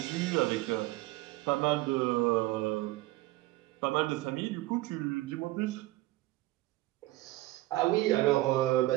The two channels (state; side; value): quieter; left; 18.0 dB